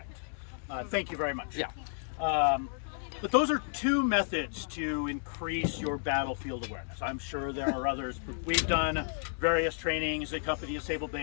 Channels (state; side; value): silent; right; 56 dB below the other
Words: Thank you very much. Yeah. But those are 2 methods to increase your battlefield awareness. I'm sure there are others. We've done various trainings at Company Sable